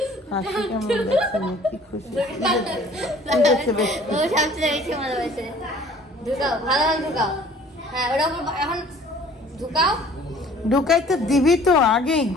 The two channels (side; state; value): both; normal; correlation 0.52